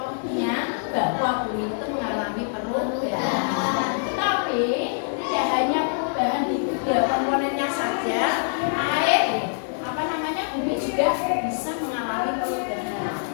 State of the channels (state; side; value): silent; right; digital silence